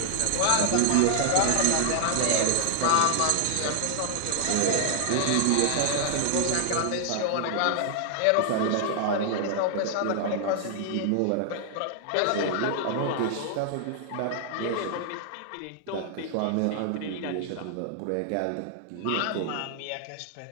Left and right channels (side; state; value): both; different; correlation 0.00